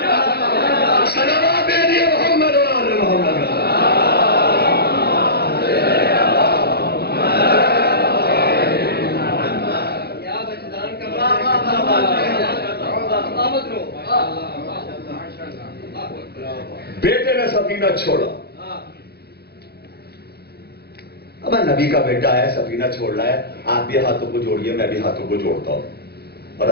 بیٹے نے سفینہ چھوڑا. اب نبی کا بیٹا ہے, سفینہ چھوڑ رہا ہے, آپ بھی ہاتھوں کو جوڑیے, میں بھی ہاتھوں کو جوڑتا ہوں, اور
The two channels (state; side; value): late; right; 0.47 ms